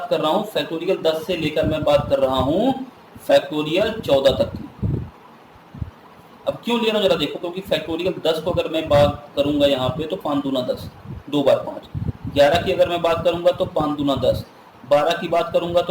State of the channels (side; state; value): both; identical; correlation 1.00